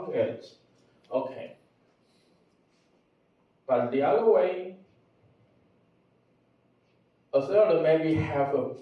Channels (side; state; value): both; identical; correlation 1.00